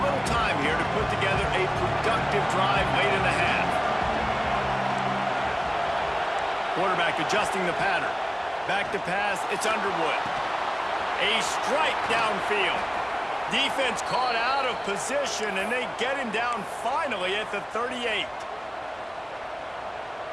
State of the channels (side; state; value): both; identical; correlation 1.00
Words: little time here to put together a productive drive late in the half. Quarterback adjusting the pattern. Back to pass, it's Underwood. A strike downfield. Defense caught out of position, and they get him down finally at the 38.